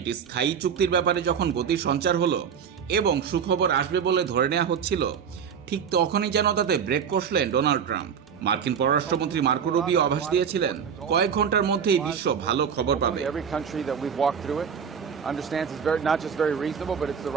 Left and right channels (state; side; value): quieter; left; 7.3 dB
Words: স্থায়ী চুক্তির ব্যাপারে যখন গতির সঞ্চার হলো এবং সুখবর আসবে বলে ধরে নেওয়া হচ্ছিল, ঠিক তখনই যেন তাতে ব্রেক কষলেন ডোনাল্ড ট্রাম্প। মার্কিন পররাষ্ট্রমন্ত্রী মার্কো রুবিও আভাস দিয়েছিলেন কয়েক ঘন্টার মধ্যেই বিশ্ব ভালো খবর পাবে। Understands it's not just very reasonable, but it's the